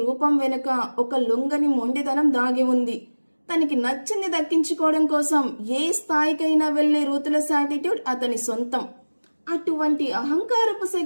రూపం వెనుక ఒక లొంగని మొండితనం దాగి ఉంది. తనకి నచ్చింది దక్కించుకోవడం కోసం ఏ స్థాయికైనా వెళ్లే రూత్లెస్ యాటిట్యూడ్ అతని సొంతం. అటువంటి అహంకారపు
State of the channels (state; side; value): inverted; both; correlation -1.00